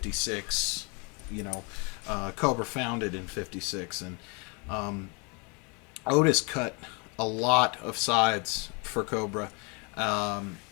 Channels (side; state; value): right; quieter; 32.3 dB